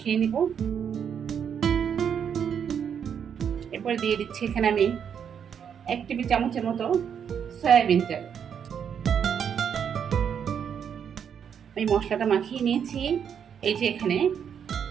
নিব। এরপরে দিয়ে দিচ্ছি এখানে আমি 1 টেবিল চামচের মতো সয়াবিন তেল। আমি মশলাটা মাখিয়ে নিয়েছি। এই যে এখানে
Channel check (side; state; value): left; quieter; 7.9 dB